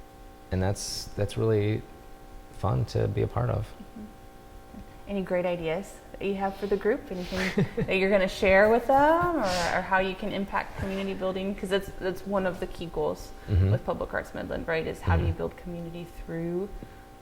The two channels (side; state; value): both; identical; correlation 1.00